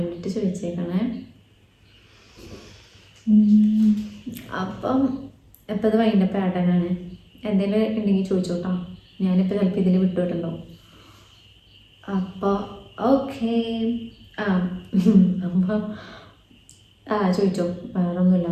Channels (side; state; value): both; identical; correlation 1.00